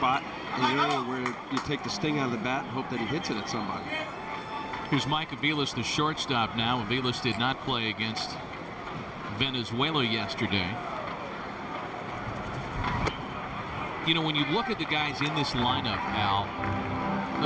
in the area where you take the sting out of the bat and hope that he hits it at somebody. Here's Mike Aviles, the shortstop now. Aviles did not play against Venezuela yesterday. You know, when you look at the guys in this lineup, Al,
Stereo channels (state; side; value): identical; both; correlation 1.00